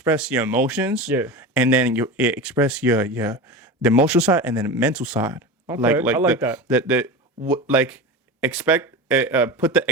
your emotions. Yeah. And then you express your the emotional side and then the mental side. Okay, I like that. Expect put the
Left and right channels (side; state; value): both; normal; correlation 0.26